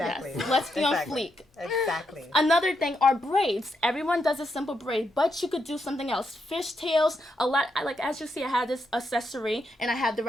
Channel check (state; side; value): normal; both; correlation 0.81